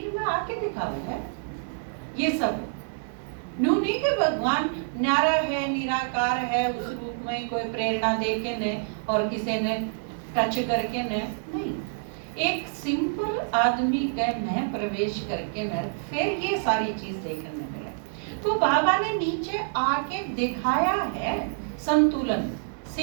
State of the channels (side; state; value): left; silent; digital silence